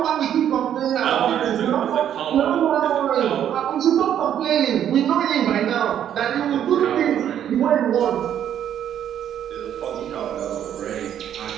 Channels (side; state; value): left; quieter; 10.0 dB